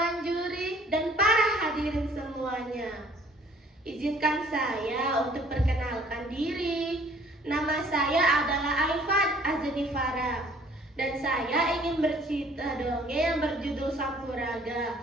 Juri, dan para hadirin semuanya. Izinkan saya untuk perkenalkan diri. Nama saya adalah Aifat Azanifara, dan saya ingin bercerita dongeng yang berjudul Sampuraga,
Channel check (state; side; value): normal; both; correlation 0.57